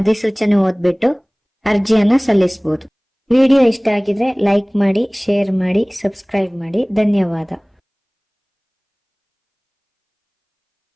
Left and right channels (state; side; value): identical; both; correlation 1.00